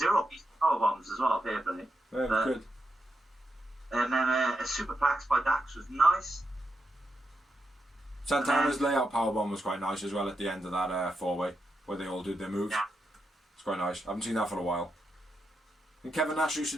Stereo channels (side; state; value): both; normal; correlation 0.85